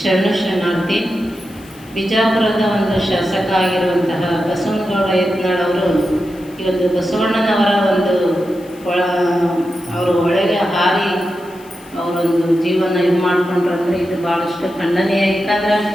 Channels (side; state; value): left; noise; hiss, 25 dB below the sound